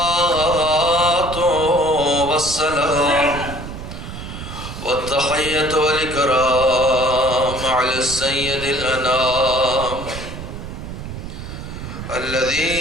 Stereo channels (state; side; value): noise; right; rumble, 9 dB below the sound